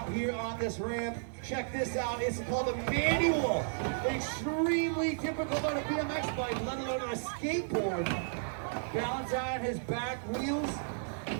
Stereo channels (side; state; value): left; silent; 55 dB below the other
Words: here on this ramp. Check this out. It's called a manual. Extremely difficult on a BMX bike, let alone on a skateboard. Balance on his back wheels,